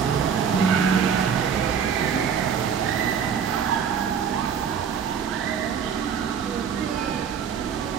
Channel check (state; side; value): quieter; left; 7.3 dB